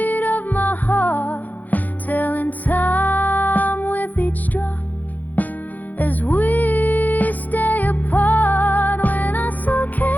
of my heart, telling time with each drop as we stay apart. When I saw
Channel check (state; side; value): late; right; 0.082 ms